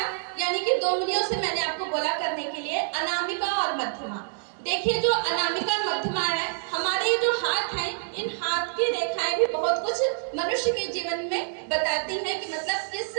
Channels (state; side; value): silent; left; digital silence